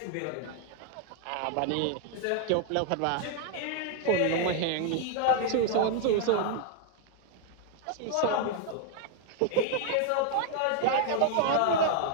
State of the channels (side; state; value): both; different; correlation 0.00